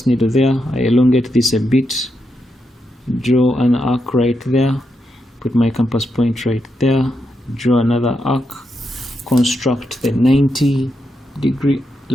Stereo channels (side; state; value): both; normal; correlation 0.84